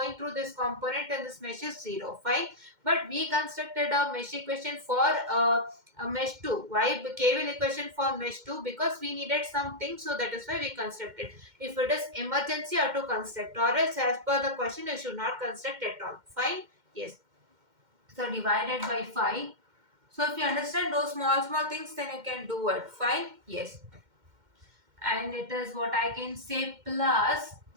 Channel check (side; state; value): left; late; 2.1 ms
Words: through this component and this mesh is 0. Fine. But we constructed a mesh equation for a mesh 2. Why KVL equation for mesh 2? Because we needed something, so that is why we constructed. If it is emergency, you have to construct, or else as per the question you should not construct at all. Fine. Yes. So divided by 5. So if you understand those small things, then you can do it. Fine. Yes. And it is what I can say plus,